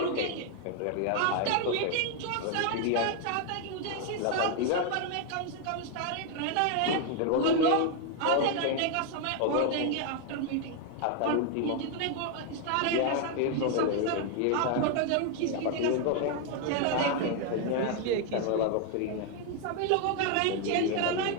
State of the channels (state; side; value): different; both; correlation 0.00